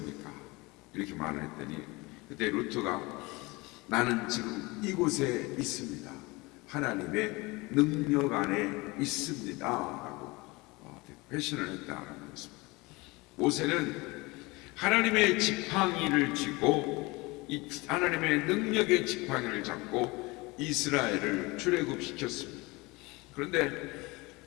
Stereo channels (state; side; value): quieter; right; 23.9 dB